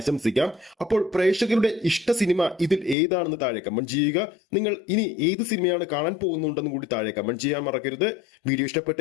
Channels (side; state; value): right; drops out; at 3.0 s